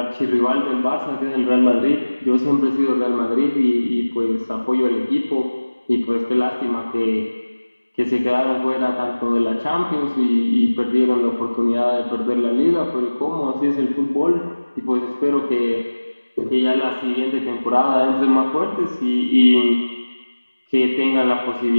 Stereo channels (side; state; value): both; inverted; correlation -1.00